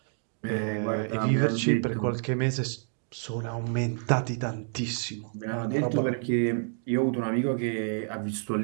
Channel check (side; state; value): left; silent; digital silence